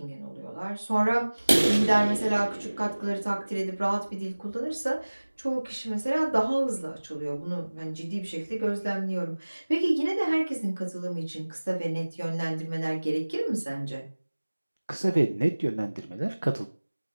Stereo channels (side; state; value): both; inverted; correlation -1.00